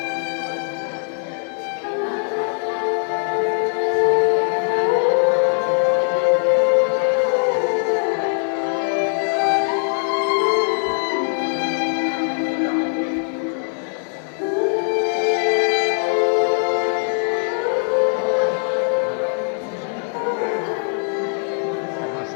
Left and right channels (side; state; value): right; silent; 56 dB below the other